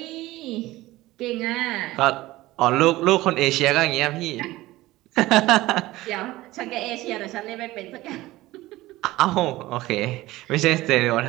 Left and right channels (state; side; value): quieter; left; 17.9 dB